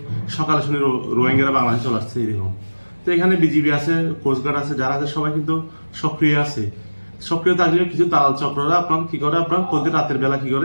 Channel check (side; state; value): both; inverted; correlation -1.00